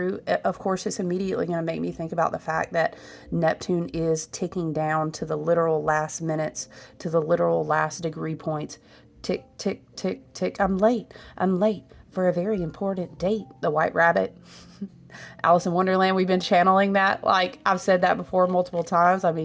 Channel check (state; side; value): identical; both; correlation 1.00